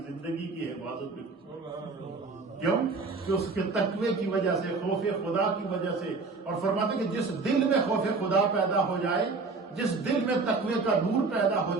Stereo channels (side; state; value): left; quieter; 4.1 dB